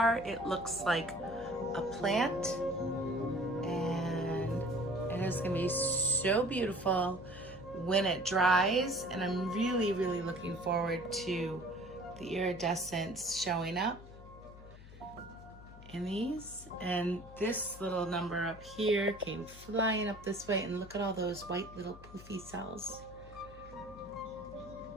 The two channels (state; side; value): noise; left; hum, 17 dB below the sound